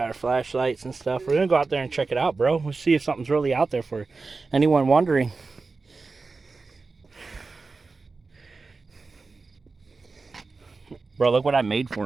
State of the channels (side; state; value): left; quieter; 4.0 dB